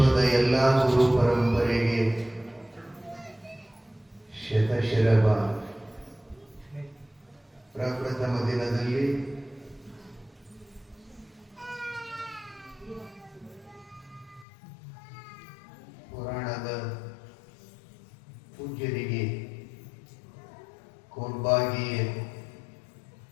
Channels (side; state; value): right; drops out; at 14.5 s